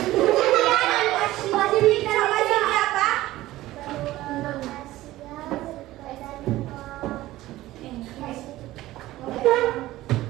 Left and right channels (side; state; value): left; quieter; 16.4 dB